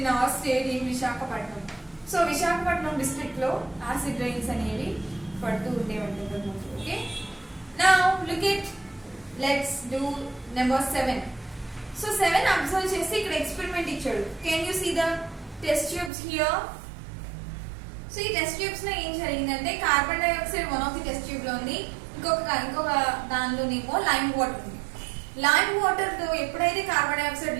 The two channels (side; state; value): left; drops out; at 16.1 s